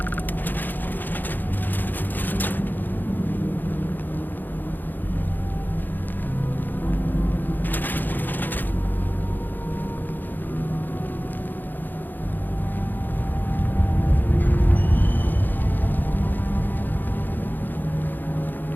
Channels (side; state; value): right; late; 0.088 ms